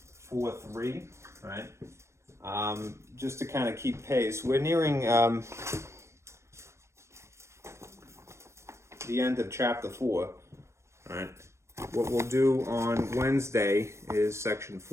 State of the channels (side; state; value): left; late; 0.13 ms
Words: 4.3, right? Just to kind of keep pace. We're nearing the end of chapter 4. All right. What we'll do on Wednesday is section